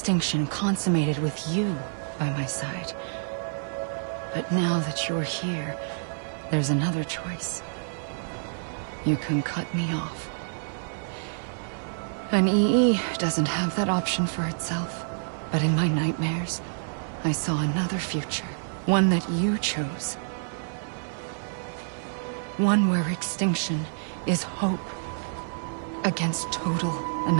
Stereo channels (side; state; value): left; silent; 56 dB below the other